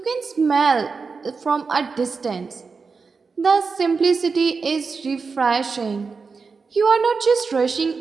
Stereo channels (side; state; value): left; quieter; 4.8 dB